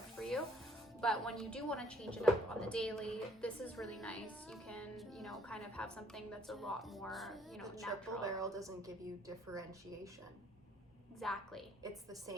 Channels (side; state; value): both; normal; correlation 0.63